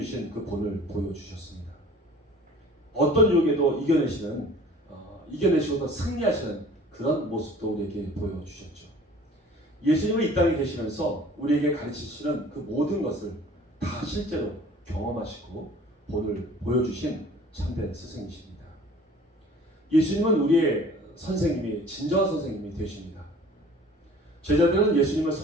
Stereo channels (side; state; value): both; normal; correlation 0.48